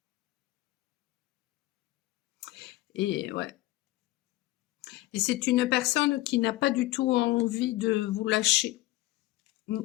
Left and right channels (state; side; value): quieter; right; 18.1 dB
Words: Et ouais. Et c'est une personne qui n'a pas du tout envie de vous lâcher. Mm.